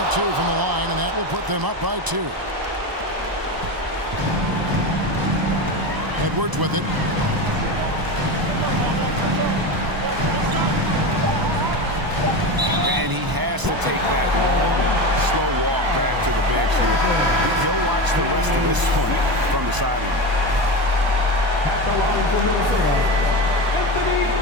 2 from the line, and that will put them up by 2. Edwards with it. And he has to take that long, slow walk back to the bench here. He'll watch the rest of this one from the sideline. At the line for Minnesota, Anthony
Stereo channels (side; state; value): left; late; 1.0 ms